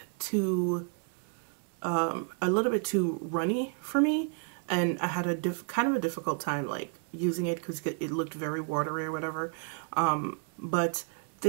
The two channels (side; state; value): left; quieter; 39.7 dB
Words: too runny for me, and I had a kind of a difficult time like using it because it looked very watery or whatever. But